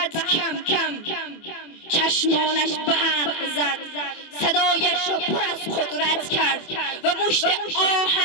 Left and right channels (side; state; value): right; late; 24 ms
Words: کم کم چشمانش برق زد، صدایش را پر از قدرت کرد و مشت